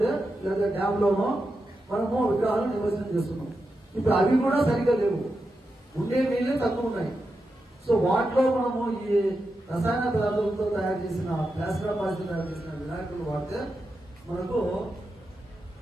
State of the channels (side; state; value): both; normal; correlation 0.88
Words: లేదా డ్యామ్ లోనో మనము విగ్రహాలు నిమజ్జనం చేస్తున్నాం. ఇప్పుడు అవి కూడా సరిగ్గా లేవు, ఉండే నీళ్ళే తక్కువ ఉన్నాయి. సో వాటిలో మనము ఈ రసాయన పదార్థాలతో తయారు చేసిన ప్లాస్టర్ ఆఫ్ పారిస్ తయారు చేసిన వినాయకులు వాడితే మనకు